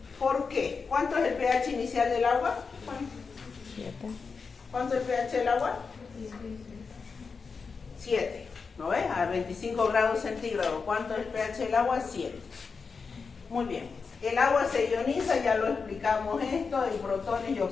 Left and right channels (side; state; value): right; quieter; 5.1 dB